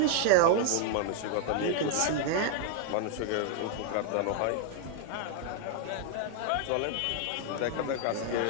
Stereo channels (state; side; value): different; both; correlation 0.00